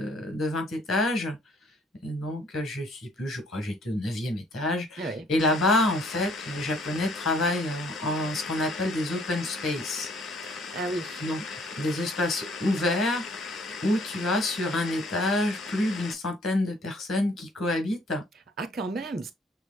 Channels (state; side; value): normal; both; correlation 0.61